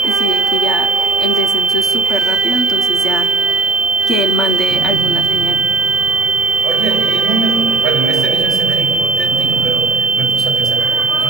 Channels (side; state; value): left; quieter; 3.5 dB